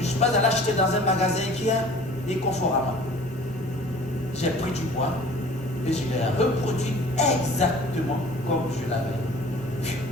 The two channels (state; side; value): normal; both; correlation 0.47